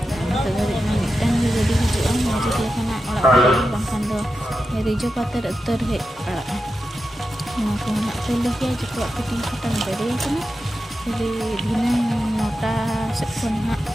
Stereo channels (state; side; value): normal; both; correlation 0.90